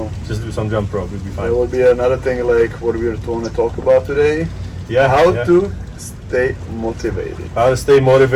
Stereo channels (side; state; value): both; identical; correlation 1.00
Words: just do some jump rope. You'll be fine. There will be another thing like what we want to talk about today. Yeah. How to stay motivated. How to stay